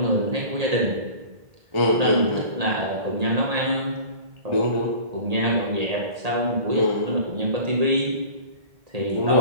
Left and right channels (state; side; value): late; left; 1.8 ms